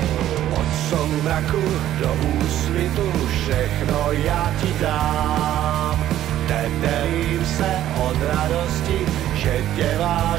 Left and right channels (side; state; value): left; quieter; 12.5 dB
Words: Soumraku do úsvitu všechno já ti dám. Tetelím se od radosti, že tě